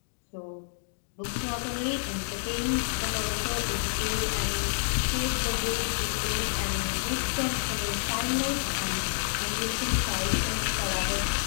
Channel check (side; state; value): right; silent; digital silence